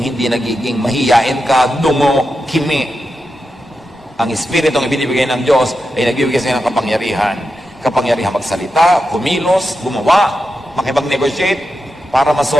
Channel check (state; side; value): normal; both; correlation 0.89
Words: nagiging mahiyain ka, dungo, kimi. Ang Espiritu ang ibinibigay ng Diyos ay nagbibigay sa ng kapangyarihan. Kapangyarihan magsalita, kumilos, gumawa, makipag-negotiate, para